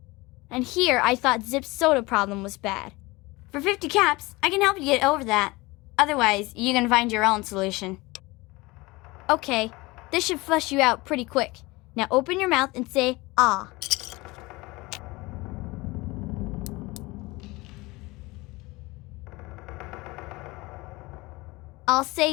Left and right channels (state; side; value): quieter; right; 22.4 dB